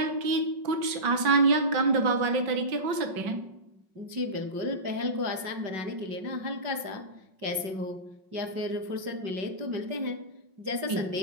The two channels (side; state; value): left; late; 5.4 ms